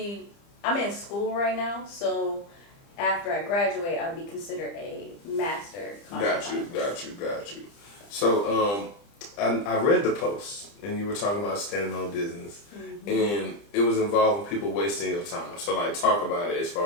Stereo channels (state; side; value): late; right; 30 ms